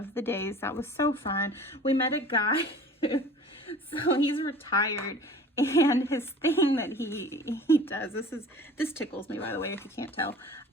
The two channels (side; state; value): both; normal; correlation 0.44